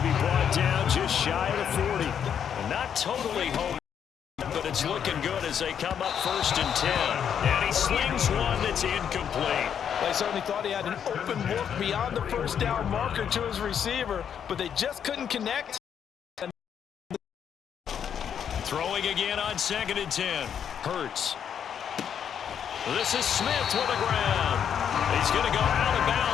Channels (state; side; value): quieter; right; 8.3 dB